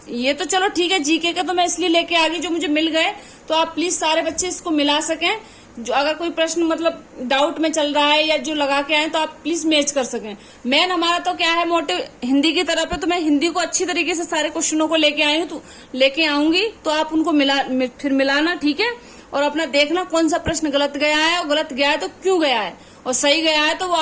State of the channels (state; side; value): identical; both; correlation 1.00